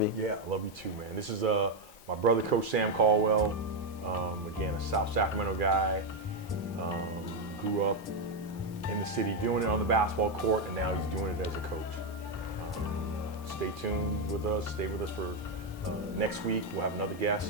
you. Yeah, I love you too, man. This is my brother, Coach Sam Caldwell. Again, a South Sacramento guy. Grew up in the city doing it on the basketball court, and now he's doing it as a coach. Stay tuned with us. Stay with us for next week. We'll have another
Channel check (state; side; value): normal; both; correlation 0.04